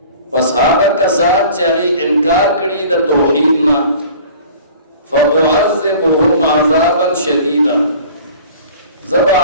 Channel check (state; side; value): inverted; both; correlation -0.46